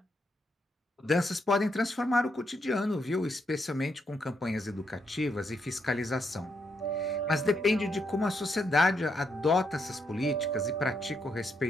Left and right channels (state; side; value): normal; both; correlation 0.78